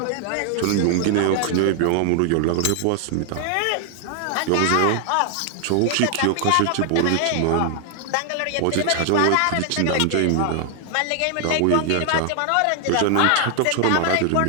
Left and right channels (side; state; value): both; different; correlation 0.00